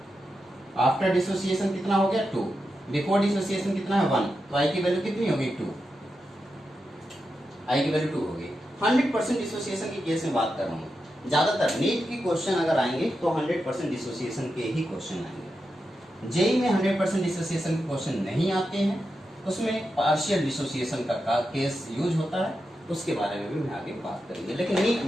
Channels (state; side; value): normal; both; correlation 0.88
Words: आफ्टर डिसोसिएशन कितना हो गया? 2। बिफोर डिसोसिएशन कितना है? 1। तो आई की वैल्यू कितनी होगी? 2। आई की वैल्यू 2 होगी। 100% डिसोसिएशन के केस में बात कर रहा हूँ। ज्यादातर नीट की क्वेश्चन अगर आएंगे तो 100% डिसोसिएशन के ही क्वेश्चन आएंगे। जेई में 100% डिसोसिएशन के क्वेश्चन नहीं आते हैं, उसमें पार्शियल डिसोसिएशन का केस यूज होता है, उसके बारे में भी मैं आगे बात करेंगे। लेकिन नीट